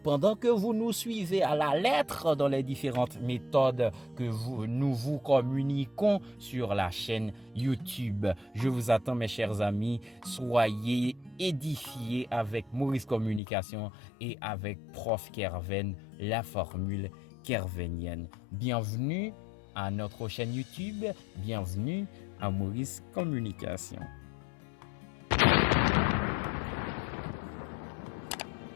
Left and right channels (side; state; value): right; drops out; at 13.4 s